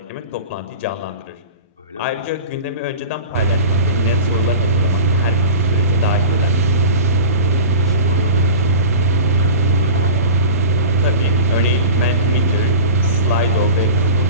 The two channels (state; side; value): inverted; both; correlation -0.34